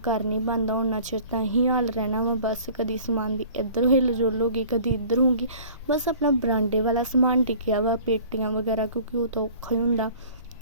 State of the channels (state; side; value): inverted; both; correlation -0.48